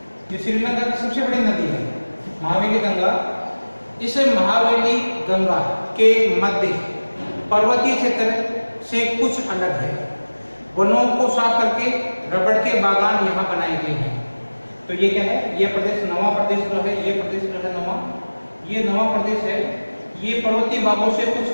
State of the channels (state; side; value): inverted; both; correlation -1.00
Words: ये श्रीलंका की सबसे बड़ी नदी है महावेली गंगा। इस महावेली गंगा के मध्य पर्वतीय क्षेत्र से कुछ अलग है। वनों को साफ करके रबड़ के बागान यहाँ बनाए गए हैं। तो ये क्या है, ये प्रदेश नवा प्रदेश जो है, ये प्रदेश जो है नवा, ये नवा प्रदेश है। ये पर्वतीय भागों से